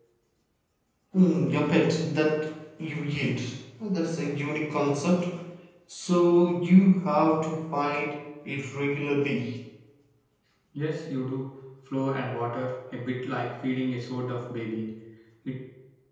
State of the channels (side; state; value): both; identical; correlation 1.00